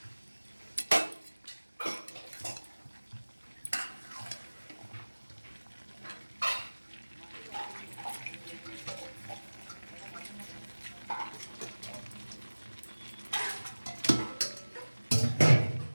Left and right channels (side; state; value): both; inverted; correlation -1.00